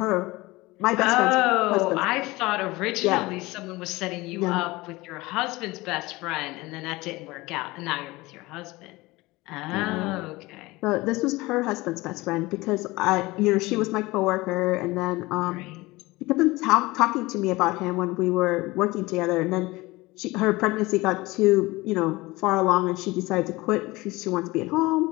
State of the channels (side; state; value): right; quieter; 21.1 dB